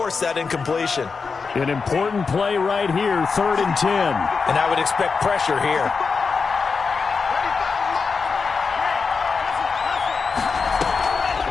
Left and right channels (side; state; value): right; quieter; 5.0 dB